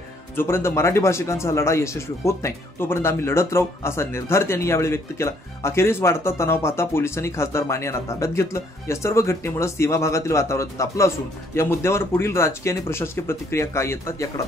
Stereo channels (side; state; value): both; normal; correlation 0.66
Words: जोपर्यंत मराठी भाषिकांचा लढा यशस्वी होत नाही तोपर्यंत आम्ही लढत राहू असा निर्धार त्यांनी यावेळी व्यक्त केला। अखेरीस वाढता तणाव पाहता पोलिसांनी खासदार माने यांना ताब्यात घेतलं। या सर्व घटनेमुळे सीमा भागातील वातावरण तापलं असून या मुद्द्यावर पुढील राजकीय आणि प्रशासकीय प्रतिक्रिया काय येतात याकडे